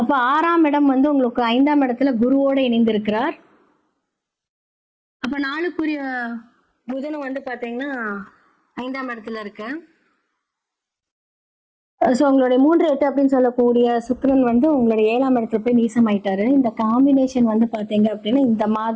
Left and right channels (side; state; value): both; identical; correlation 1.00